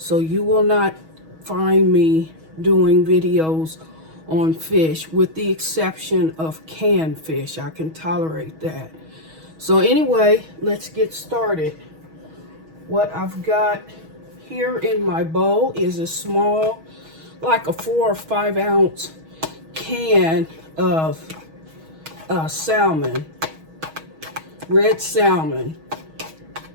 you will not find me doing videos on fish with the exception of canned fish. I can tolerate that. So anyway, let's get started. What I've got here in my bowl is a small, like a 4 or 5 ounce can of salmon, red salmon.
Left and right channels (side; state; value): left; late; 6.3 ms